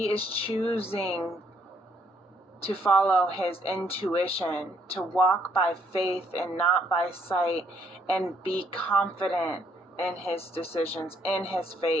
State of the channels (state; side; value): normal; both; correlation 0.69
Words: is choosing to follow his intuition, to walk by faith and not by sight, and be confident in his decisions, in his